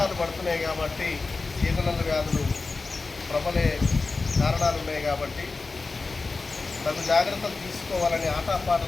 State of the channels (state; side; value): quieter; right; 3.9 dB